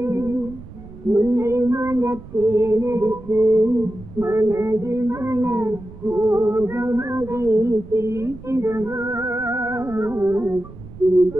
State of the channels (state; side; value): noise; right; rumble, 17 dB below the sound